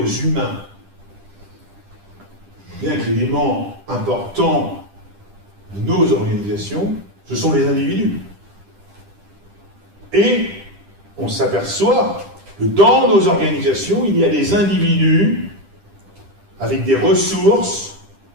humains. Bien que l'élément important de nos organisations, ce sont les individus. Et on s'aperçoit que dans nos organisations, il y a des individus avec des ressources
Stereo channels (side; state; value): left; late; 10 ms